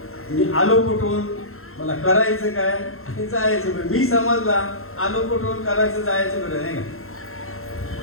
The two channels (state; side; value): late; right; 0.62 ms